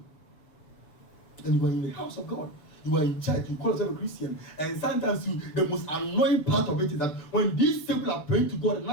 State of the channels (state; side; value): late; right; 6.7 ms